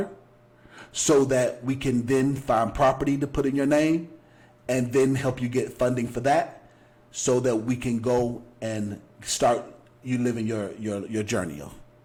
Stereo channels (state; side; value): identical; both; correlation 1.00